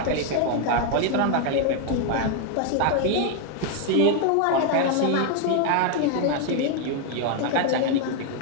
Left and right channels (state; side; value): different; both; correlation 0.00